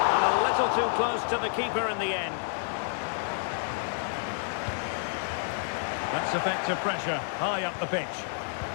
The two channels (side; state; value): right; silent; 58 dB below the other